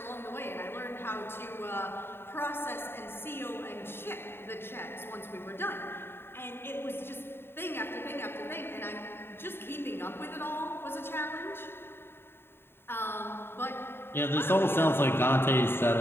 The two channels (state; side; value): late; right; 0.11 ms